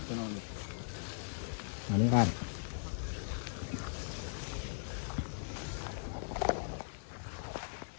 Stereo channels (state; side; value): silent; right; digital silence